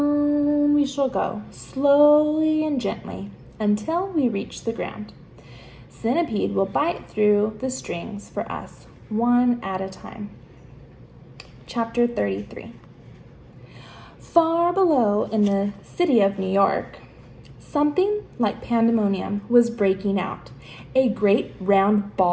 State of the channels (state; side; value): identical; both; correlation 1.00